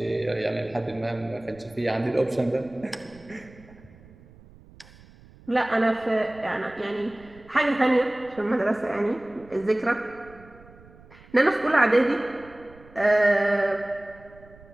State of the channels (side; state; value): right; noise; rumble, 23 dB below the sound